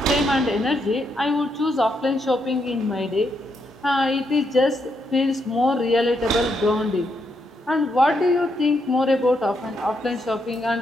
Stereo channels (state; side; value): normal; both; correlation 0.79